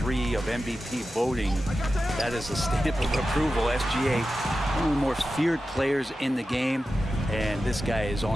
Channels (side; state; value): both; normal; correlation 0.92